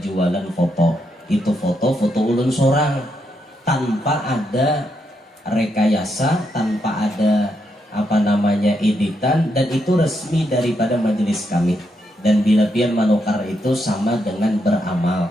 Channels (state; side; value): normal; both; correlation 0.80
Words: foto. Itu foto ulun seorang tanpa ada rekayasa, tanpa ada editan, dan itu resmi daripada majelis kami. Dan bila pian manukar itu sama dengan